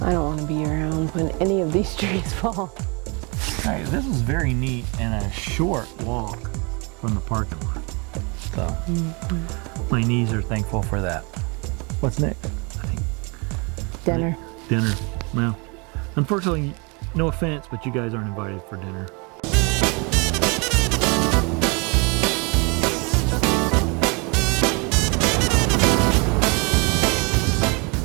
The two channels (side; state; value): left; quieter; 31.1 dB